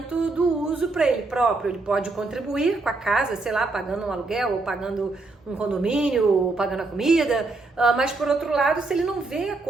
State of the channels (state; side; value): quieter; left; 3.4 dB